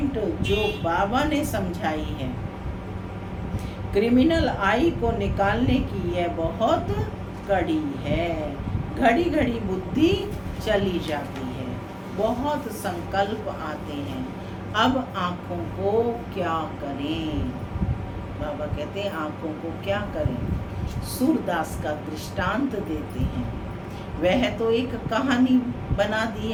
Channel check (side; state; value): both; identical; correlation 1.00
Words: जो बाबा ने समझाई है। क्रिमिनल आई को निकालने की यह बहुत कड़ी है। घड़ी घड़ी बुद्धि चली जाती है, बहुत संकल्प आते हैं। अब आँखों को क्या करें? बाबा कहते हैं आँखों को क्या करें? सूरदास का दृष्टांत देते हैं। वह तो एक कहानी बना दी